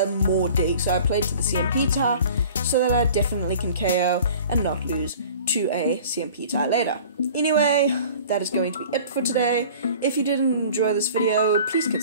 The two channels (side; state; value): both; inverted; correlation -0.45